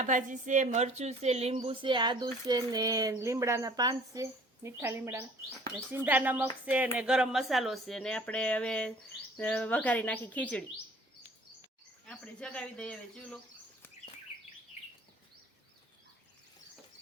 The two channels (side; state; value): both; normal; correlation 0.52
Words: ભાજી છે, મરચું છે, લીંબુ છે, આદુ છે ને લીમડાના પાન છે, મીઠા લીમડાના, ને સિંધા નમક છે ને ગરમ મસાલો છે. ને આપણે હવે વઘારી નાખી ખીચડી. આપણે જગાવી દઈએ હવે ચૂલો.